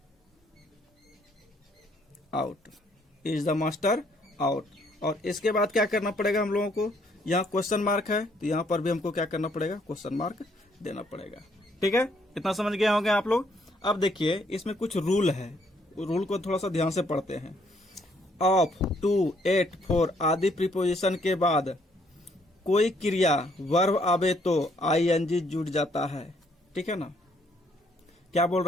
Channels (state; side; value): normal; both; correlation 0.68